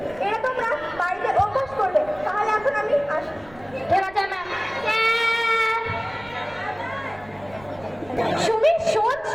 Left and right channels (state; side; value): noise; right; rumble, 23 dB below the sound